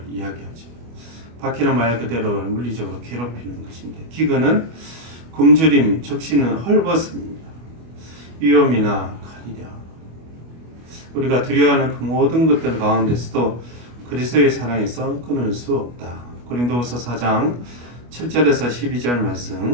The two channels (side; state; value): left; late; 25 ms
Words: 이야기하죠. 박해는 말 그대로 물리적으로 괴롭히는 것인데 기근은 굶주림, 적신은 헐벗음입니다. 위험이나 칼이랴. 우리가 두려워하는 그 모든 것들 가운데서도 그리스도의 사랑에서 끊을 수 없다. 고린도후서 4장 7절에서 12절